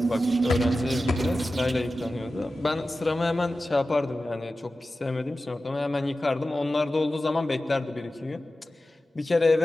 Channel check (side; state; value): both; normal; correlation 0.94